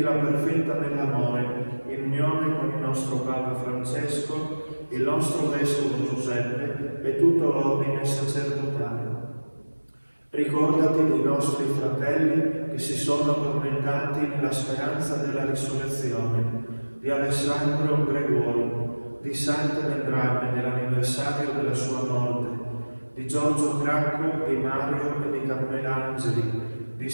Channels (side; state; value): both; inverted; correlation -1.00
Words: perfetta nell'amore, in unione con il nostro Papa Francesco, il nostro Vescovo Giuseppe e tutto l'ordine sacerdotale. Ricordati dei nostri fratelli che si sono addormentati nella speranza della risurrezione, di Alessandro Gregorio, di Santa Vendrame nell'anniversario della sua morte, di Giorgio Cracco, di Mario e di Carmela Angeli, di